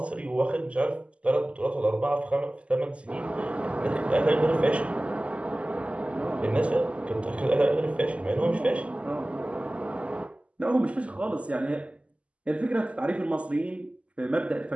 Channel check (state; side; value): late; left; 0.061 ms